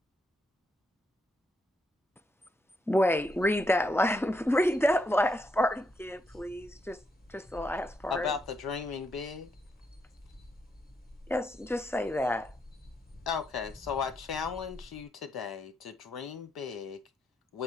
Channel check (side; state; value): both; normal; correlation 0.79